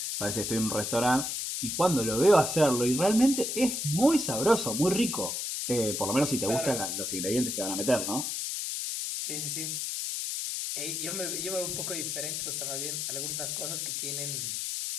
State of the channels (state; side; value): noise; left; hiss, 2 dB below the sound